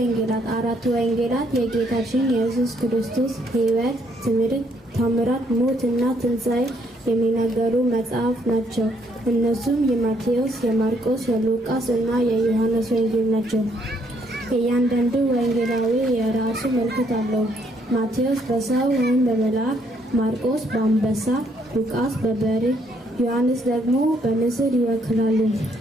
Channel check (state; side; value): normal; both; correlation 0.70